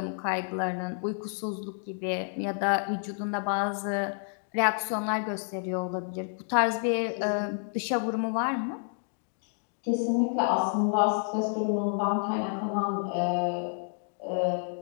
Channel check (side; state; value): right; silent; 58 dB below the other